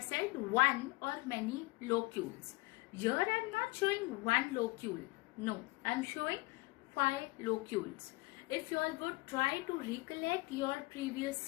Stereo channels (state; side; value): quieter; right; 23.7 dB